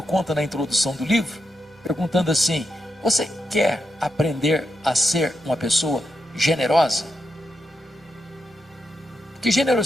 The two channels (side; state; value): both; normal; correlation 0.85